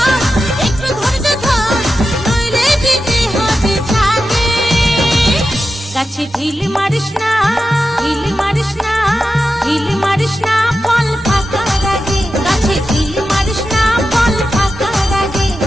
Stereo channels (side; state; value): both; normal; correlation 0.91